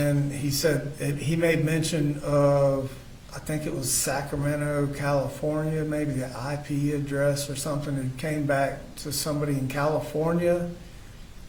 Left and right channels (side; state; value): both; identical; correlation 1.00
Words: he said, he made mention of, I think it was Sacramento, California, maybe the IP address or something. It came back to somebody in California,